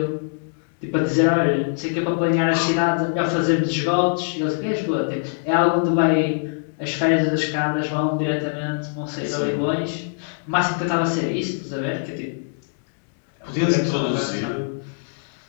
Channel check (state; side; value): silent; right; digital silence